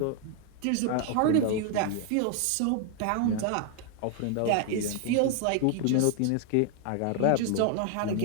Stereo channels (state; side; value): different; both; correlation 0.00